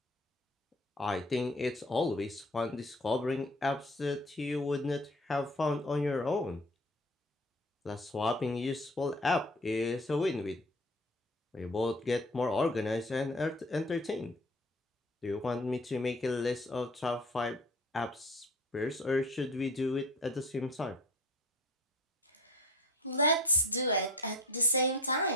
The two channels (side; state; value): both; normal; correlation 0.41